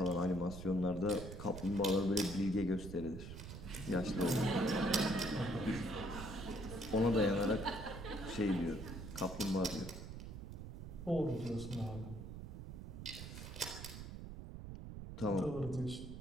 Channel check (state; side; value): noise; right; rumble, 9 dB below the sound